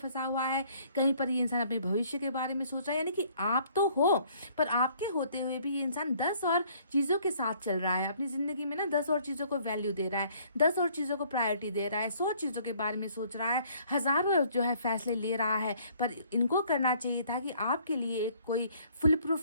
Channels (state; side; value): inverted; both; correlation -0.60